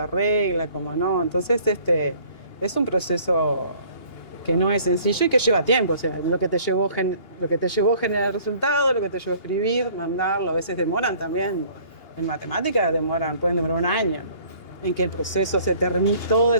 cómo no. Entonces, es un proceso que no es sencillo y que lleva tiempo, o sea, lo que te llevó a generar el resultado, lo que te llevó a escribir, mandarlo, a veces demoran también, en matemáticas pueden demorar un año, en que el proceso se termine, todo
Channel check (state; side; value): late; right; 2.8 ms